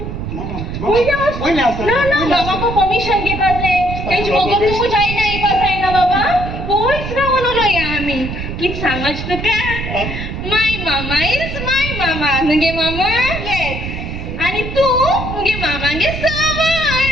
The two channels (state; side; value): noise; right; rumble, 6 dB below the sound